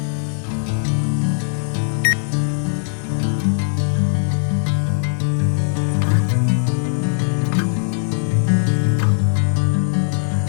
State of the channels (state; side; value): silent; right; 66 dB below the other